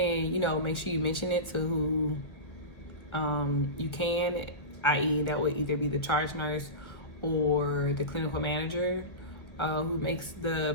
know, make sure you mention it to who you can, i.e. that would either be the charge nurse or the clinical manager who makes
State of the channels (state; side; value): late; right; 1.6 ms